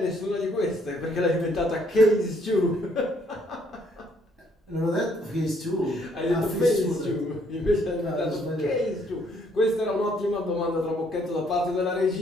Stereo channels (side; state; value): both; normal; correlation 0.67